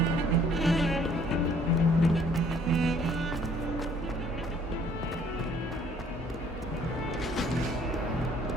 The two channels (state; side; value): normal; both; correlation 0.59